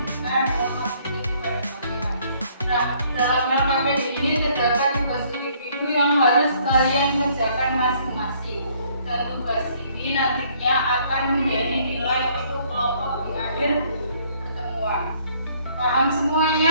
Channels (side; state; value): both; inverted; correlation -0.63